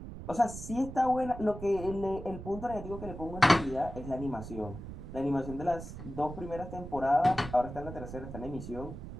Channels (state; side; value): noise; right; rumble, 10 dB below the sound